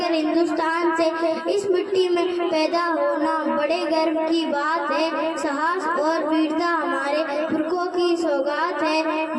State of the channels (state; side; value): identical; both; correlation 1.00